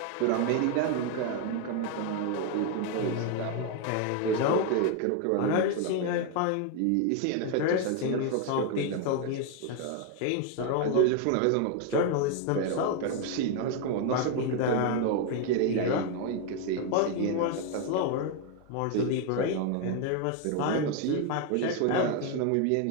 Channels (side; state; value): both; different; correlation 0.01